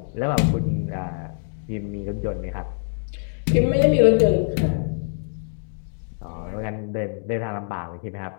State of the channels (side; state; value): right; silent; digital silence